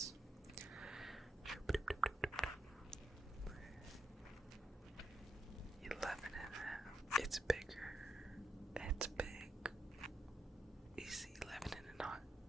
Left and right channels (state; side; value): normal; both; correlation 0.82